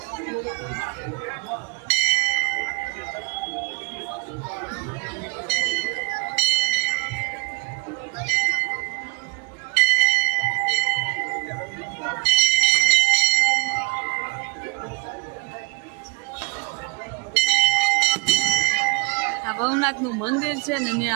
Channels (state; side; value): quieter; left; 33.7 dB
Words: ભવનાથનું મંદિર છે ને એની